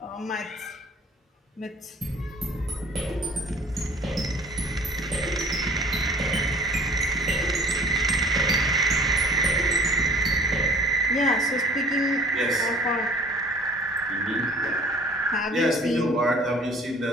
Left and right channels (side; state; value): both; normal; correlation 0.49